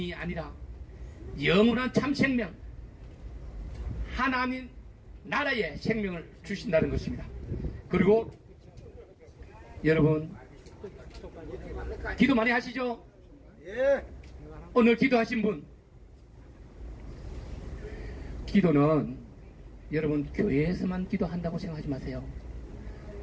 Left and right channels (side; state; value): both; identical; correlation 1.00